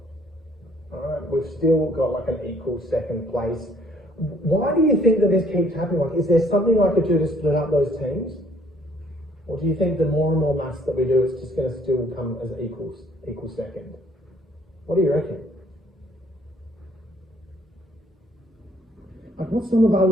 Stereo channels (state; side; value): normal; both; correlation 0.62